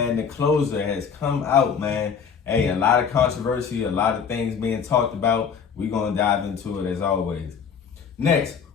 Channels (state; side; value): quieter; right; 6.7 dB